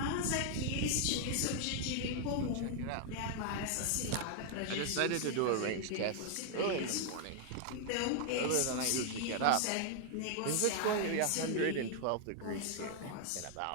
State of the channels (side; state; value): both; different; correlation 0.00